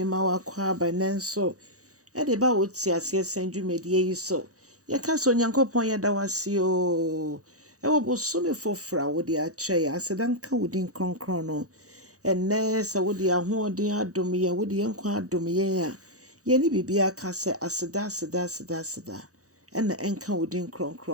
ma wakwa by nenso. De ba woti ase senju medie yi so. Ye ka so Onyankopɔn ye da wase o. Wo bosome fofra wo de akyɛ ya asedan ka wodin kronkron no. Enne sa wo de ahoɔden adom ye wo de nkwa adom ye a. Ye ni bibia ka se aseda. Ena enka wodin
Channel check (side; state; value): left; late; 0.66 ms